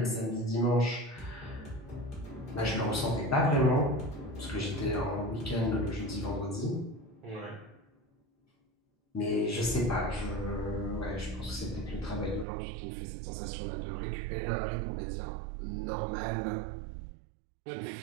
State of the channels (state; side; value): drops out; left; at 12.5 s